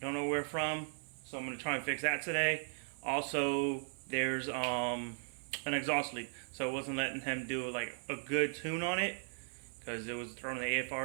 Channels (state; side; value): silent; left; digital silence